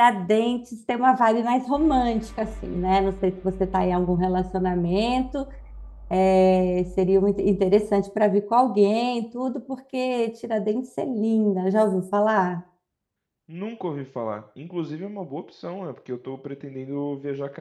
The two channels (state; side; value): identical; both; correlation 1.00